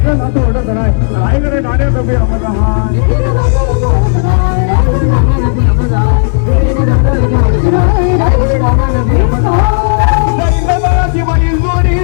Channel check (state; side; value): silent; right; digital silence